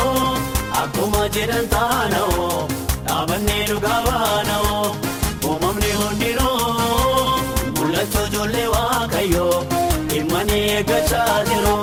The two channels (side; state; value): both; identical; correlation 1.00